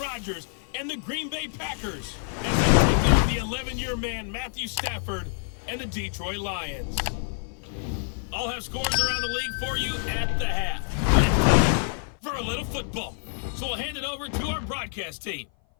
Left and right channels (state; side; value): silent; right; 56 dB below the other